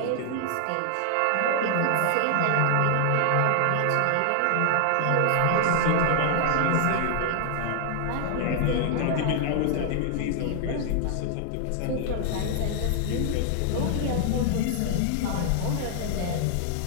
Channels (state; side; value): different; both; correlation 0.00